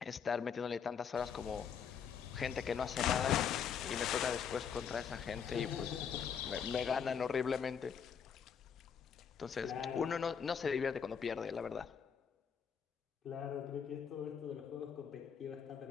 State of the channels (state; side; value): quieter; right; 7.2 dB